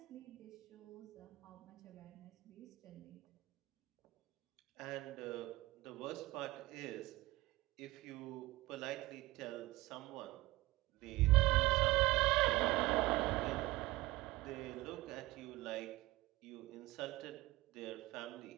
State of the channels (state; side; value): quieter; left; 19.6 dB